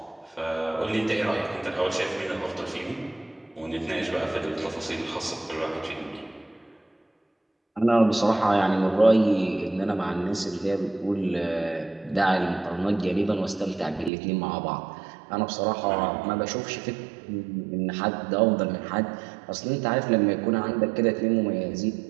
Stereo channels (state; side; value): drops out; left; at 14.1 s